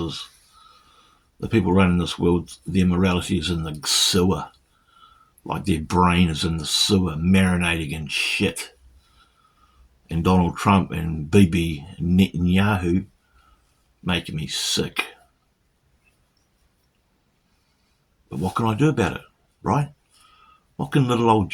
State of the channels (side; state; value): both; identical; correlation 1.00